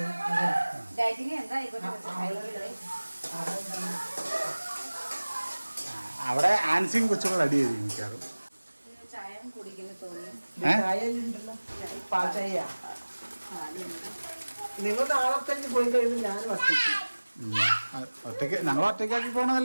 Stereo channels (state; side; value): inverted; both; correlation -1.00